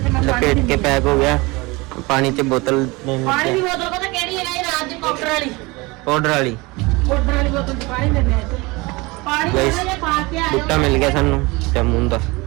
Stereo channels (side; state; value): left; quieter; 24.0 dB